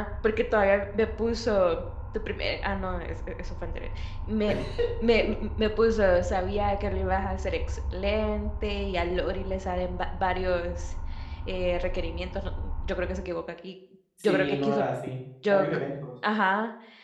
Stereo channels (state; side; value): identical; both; correlation 1.00